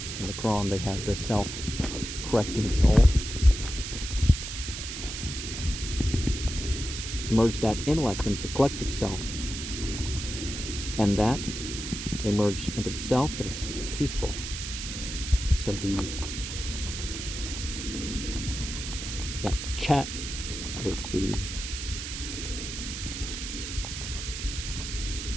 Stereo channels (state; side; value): noise; right; hiss, 6 dB below the sound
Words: In the Quran they have the self-correcting soul. Merge that intellect into the collective self. And that they merge into the self that is peaceful. So the chat is the